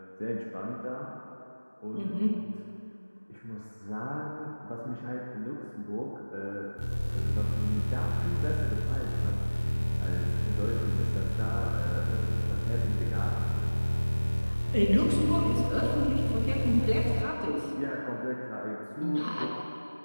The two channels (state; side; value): inverted; both; correlation -1.00